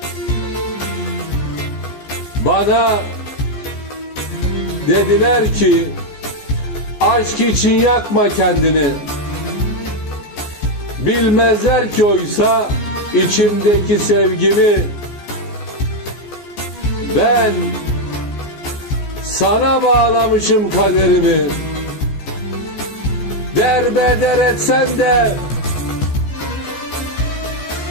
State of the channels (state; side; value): late; right; 14 ms